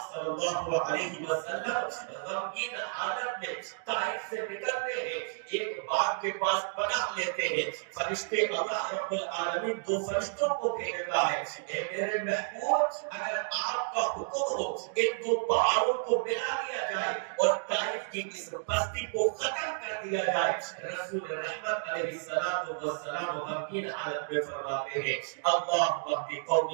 صلی اللہ علیہ وسلم غمگین حالت میں طائف سے نکلتے ہیں، ایک باغ کے پاس پناہ لیتے ہیں۔ فرشتے اللہ رب العالمین 2 فرشتوں کو بھیجتا ہے، اے میرے محبوب اگر آپ کا حکم ہو ان 2 پہاڑوں کو ملا دیا جائے اور طائف کی اس بستی کو ختم کر دیا جائے۔ رسول رحمت علیہ السلام غمگین حالت میں فرماتے ہیں اللہم اہد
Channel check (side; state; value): left; silent; digital silence